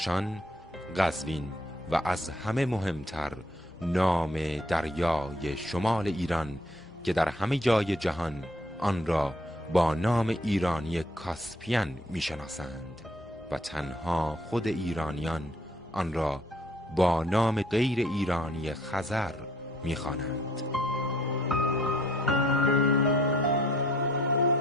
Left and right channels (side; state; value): both; normal; correlation 0.62